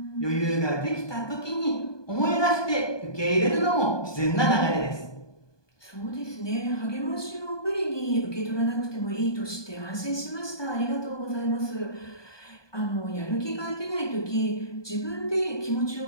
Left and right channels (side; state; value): right; late; 1.2 ms